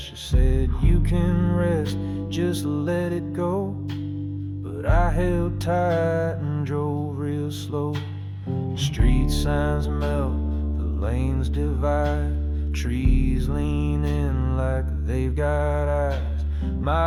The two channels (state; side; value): identical; both; correlation 1.00